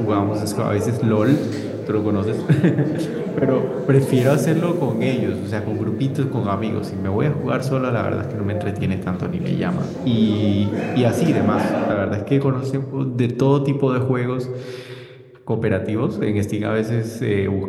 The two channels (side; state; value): both; identical; correlation 1.00